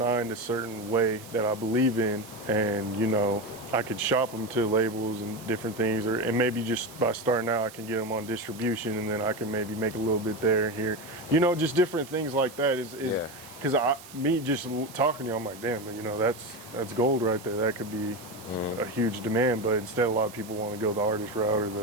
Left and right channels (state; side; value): noise; right; hiss, 18 dB below the sound